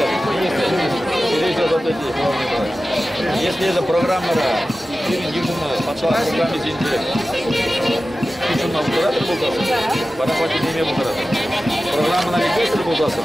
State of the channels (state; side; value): normal; both; correlation 0.95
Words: если это программа пошла с руками интеллекта. Şundan bu kadar buldasın. Bana fakir demeye bu kadar. Programına bir göster buldasın.